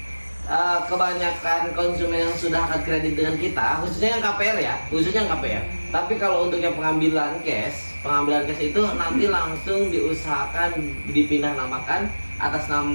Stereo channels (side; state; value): both; inverted; correlation -1.00